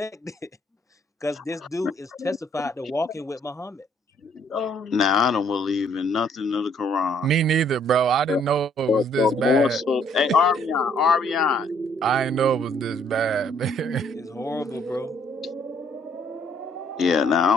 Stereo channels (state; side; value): normal; both; correlation 0.65